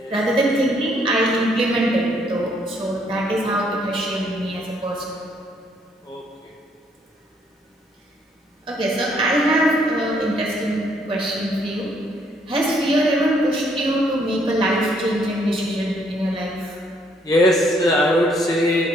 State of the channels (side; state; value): both; normal; correlation 0.68